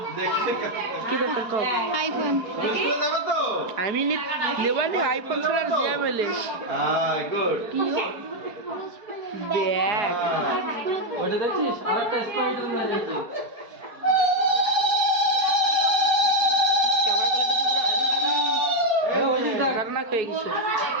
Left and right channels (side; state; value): left; late; 4.6 ms